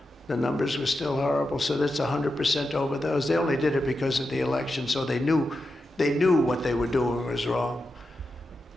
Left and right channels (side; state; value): both; normal; correlation 0.89